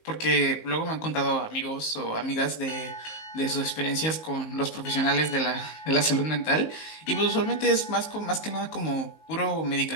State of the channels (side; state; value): right; late; 19 ms